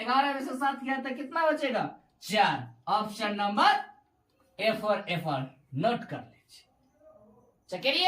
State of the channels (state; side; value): identical; both; correlation 1.00